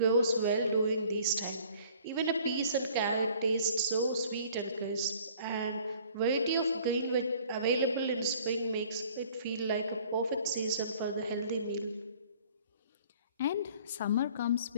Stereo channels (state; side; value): inverted; both; correlation -0.53